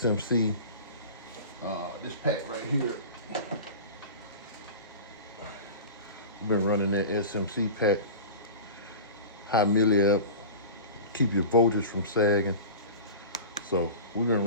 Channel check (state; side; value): inverted; both; correlation -0.34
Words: This pack right here, I've been running that SMC pack, high milliamp, keep your voltage from sagging. So we've been